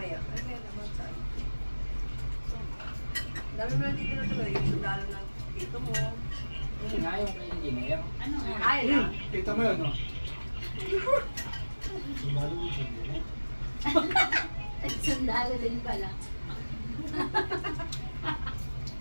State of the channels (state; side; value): inverted; both; correlation -1.00